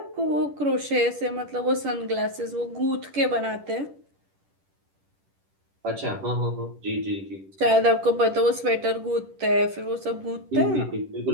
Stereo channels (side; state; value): left; late; 10 ms